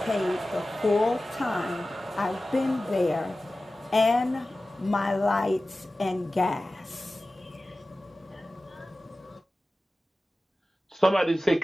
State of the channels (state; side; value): normal; both; correlation 0.96